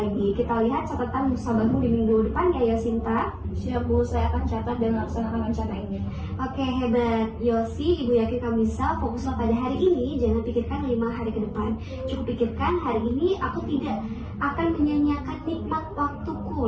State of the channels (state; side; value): identical; both; correlation 1.00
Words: lagi. Kita lihat catatan musabahmu di minggu depan ya Yosinta. Siap Bu, saya akan catat dan laksanakan rencana ini. Oke, hebat Yosi, ibu yakin kamu bisa. Fokuslah pada hari ini, jangan pikirkan 5 hari ke depan. Cukup pikirkan hari ini aku tidak akan menyanyiakan nikmat waktuku